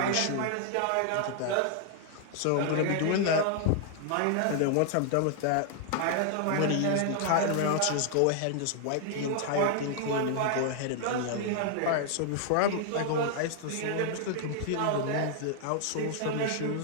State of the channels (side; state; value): both; different; correlation 0.00